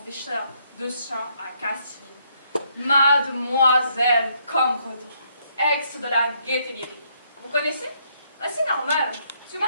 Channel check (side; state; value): both; inverted; correlation -0.71